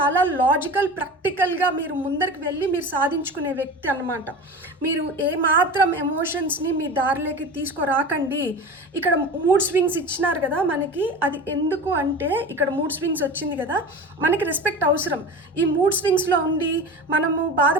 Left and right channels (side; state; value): both; normal; correlation 0.32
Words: లాజికల్, ప్రాక్టికల్గా మీరు ముందరికి వెళ్ళి మీరు సాధించుకునే వ్యక్తి అన్నమాట. మీరు ఏమాత్రం ఎమోషన్స్ని మీ దారిలోకి తీసుకురాకండి. ఇక్కడ మూడ్ స్వింగ్స్ ఇచ్చినారు కదా మనకి, అది ఎందుకు అంటే ఇక్కడ మూడ్ స్వింగ్స్ వచ్చింది కదా, మనకి రెస్పెక్ట్ అవసరం. ఈ మూడ్ స్వింగ్స్లో ఉండి మనము